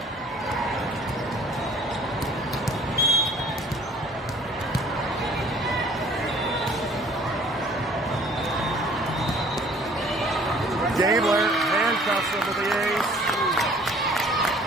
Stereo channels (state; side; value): normal; both; correlation 0.54